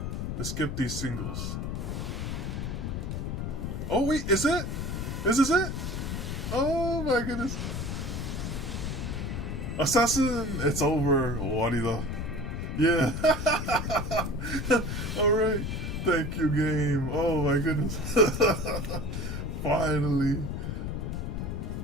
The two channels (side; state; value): left; noise; rumble, 3 dB below the sound